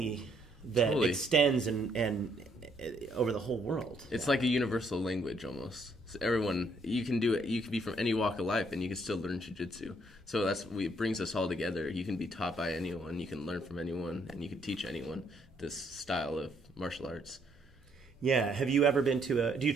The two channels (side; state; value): both; normal; correlation 0.70